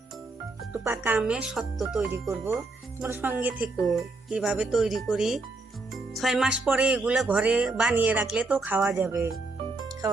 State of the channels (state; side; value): quieter; left; 3.4 dB